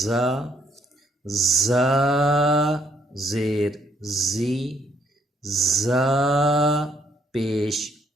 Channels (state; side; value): normal; both; correlation 0.68